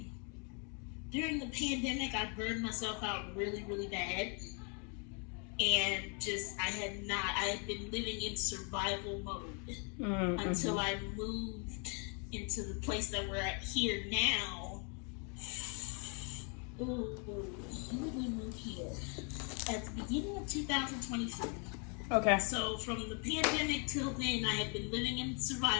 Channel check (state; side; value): quieter; right; 37.4 dB